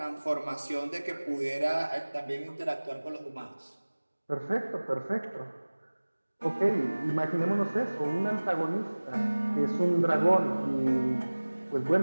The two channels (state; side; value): inverted; both; correlation -1.00